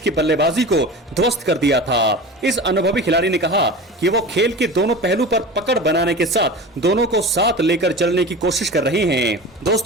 बल्लेबाजी को ध्वस्त कर दिया था। इस अनुभवी खिलाड़ी ने कहा कि वो खेल के दोनों पहलू पर पकड़ बनाने के साथ दोनों को साथ लेकर चलने की कोशिश कर रहे हैं।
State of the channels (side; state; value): both; normal; correlation 0.33